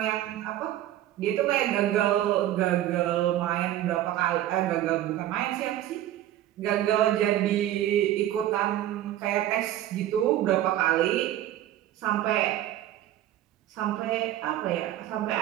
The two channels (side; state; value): left; quieter; 13.0 dB